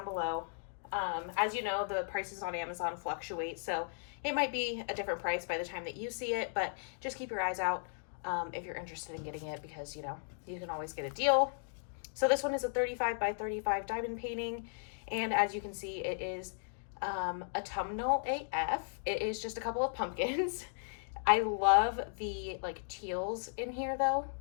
below. As you know, the prices on Amazon fluctuate, so it might be a different price by the time that you see it, but just keep your eyes out if you're interested in getting it, because you know, you can always get a deal. So this one is a 35 by 35 diamond painting, and as you can see, it is autumnal AF. It is just a couple of pumpkins. I love the like teals in here though.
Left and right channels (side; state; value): right; silent; digital silence